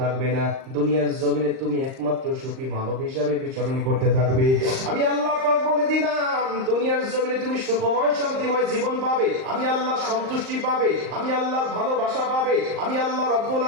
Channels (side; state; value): left; late; 38 ms